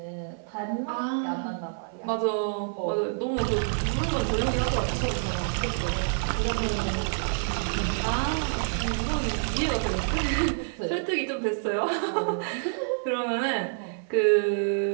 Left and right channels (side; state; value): left; silent; 56 dB below the other